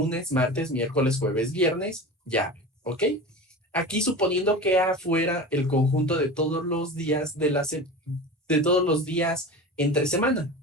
martes, miércoles, jueves, viernes, llave, ¿ok? Aquí suponiendo que A fuera el conjunto de todos los días de todos los días entre semana,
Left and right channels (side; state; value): both; normal; correlation 0.31